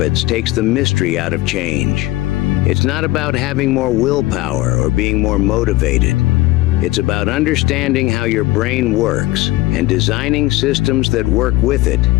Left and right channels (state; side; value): quieter; right; 17.9 dB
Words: takes the mystery out of change. It's not about having more willpower or being more motivated. It's about understanding how your brain works and designing systems that work with it